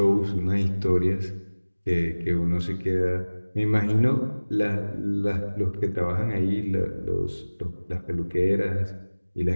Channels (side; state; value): both; inverted; correlation -1.00